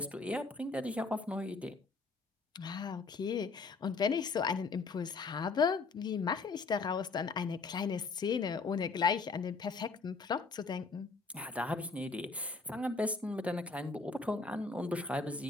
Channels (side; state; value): right; quieter; 4.2 dB